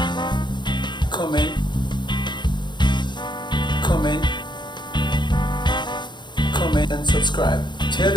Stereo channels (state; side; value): late; right; 0.22 ms